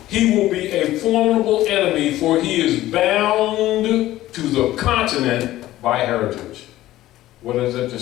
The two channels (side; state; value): right; quieter; 15.2 dB